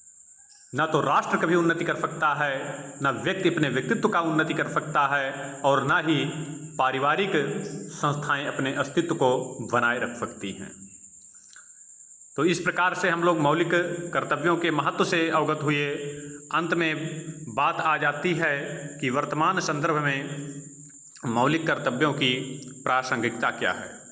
न तो राष्ट्र कभी उन्नति कर सकता है, न व्यक्ति अपने व्यक्तित्व का उन्नति कर सकता है, और न ही पारिवारिक संस्थाएं अपने अस्तित्व को बनाए रख सकती हैं। तो इस प्रकार से हम लोग मौलिक कर्तव्यों के महत्व से अवगत हुए। अंत में बात आ जाती है कि वर्तमान संदर्भ में मौलिक कर्तव्यों की प्रासंगिकता क्या है।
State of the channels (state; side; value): identical; both; correlation 1.00